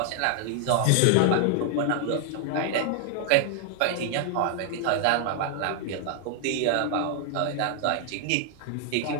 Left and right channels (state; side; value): different; both; correlation 0.00